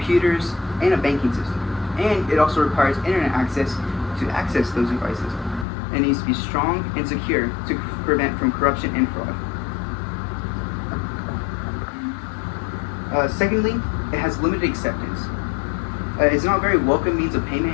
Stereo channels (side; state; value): right; drops out; at 5.7 s